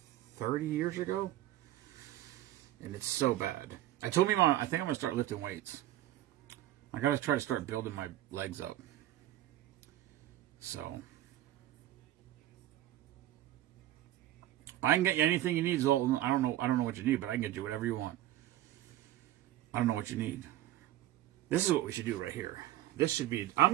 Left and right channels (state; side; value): quieter; left; 14.2 dB